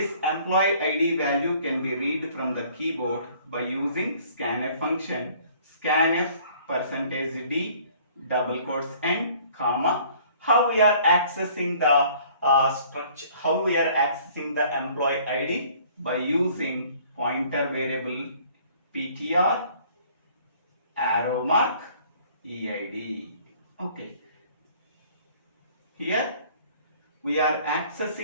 employee ID value can be read from the keyboard by using scanf function, scanf %d double quotes and comma. How we are accessing the structure? How we are accessing the employee ID? By using pointer variable ptr arrow mark EID. Okay. Here we are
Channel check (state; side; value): inverted; both; correlation -0.55